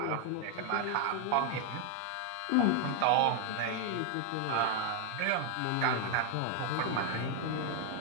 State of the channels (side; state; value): both; different; correlation 0.00